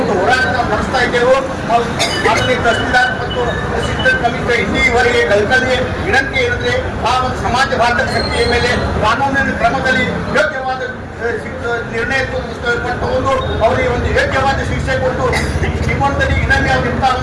ಒಂದು ಹೋರಾಟ ನಡೆಸ್ತಾ ಇದ್ದೇವೆ. ಮಾನನೀಯ ತಹಸೀಲ್ದಾರ್ ಮತ್ತು ಅಸಿಸ್ಟೆಂಟ್ ಕಮಿಷನರ್ ಇಲ್ಲಿವರೆಗೆ ಕಲ್ಕಲಿಗೆ ವಿನಂತಿ ಏನಂದ್ರೆ ಆ ಒಂದು ಸಮಾಜಘಾತಕ ಶಕ್ತಿಯ ಮೇಲೆ ಕಾನೂನಿನ ಕ್ರಮದಲ್ಲಿ ಯೋಗ್ಯವಾದ ನಿರ್ಣಯ ತಗೊಂಡು ಅವರಿಗೆ ಒಂದು ಯೋಗ್ಯವಾದ ಶಿಕ್ಷೆ ಕೊಟ್ಟು ನಿಮ್ಮೊಂದಿಗೆ ಇನ್ನೊಮ್ಮೆ ಅವರಿಂದ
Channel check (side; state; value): both; identical; correlation 1.00